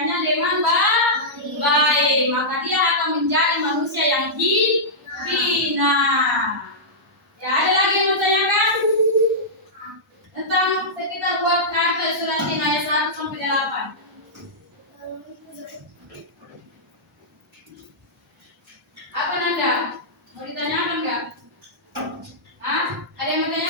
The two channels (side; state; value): both; normal; correlation -0.13